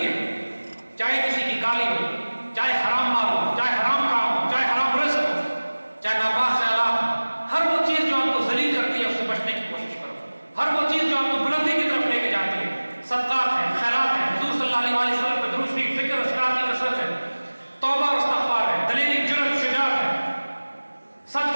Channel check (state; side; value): inverted; both; correlation -1.00